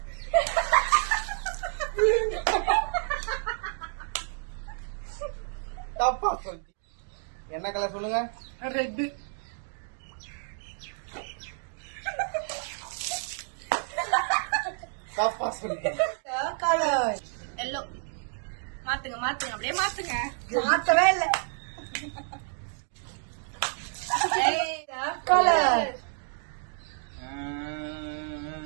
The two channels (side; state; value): left; silent; 58 dB below the other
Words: தப்பா சொல்லி என்ன கலர் சொல்லுங்க? ரெட். தப்பா சொல்லி கலர் எல்லோ. மாத்துங்க மாத்துங்க அப்படியே மாத்துங்க. மாத்தவே இல்ல. கலர்